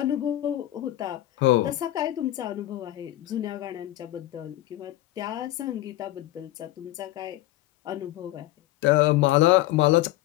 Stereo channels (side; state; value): right; quieter; 15.6 dB